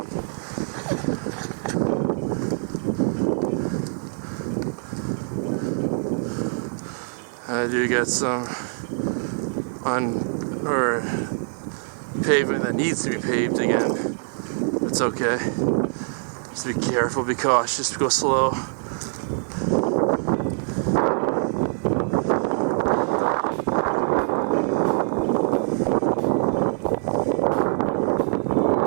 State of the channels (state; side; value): silent; left; 56 dB below the other